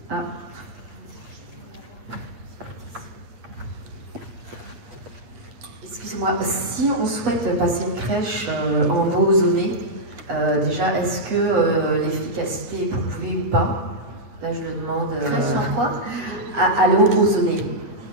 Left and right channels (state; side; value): late; left; 8.6 ms